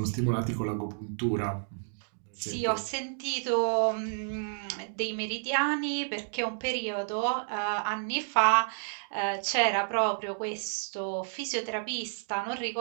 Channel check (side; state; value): left; silent; digital silence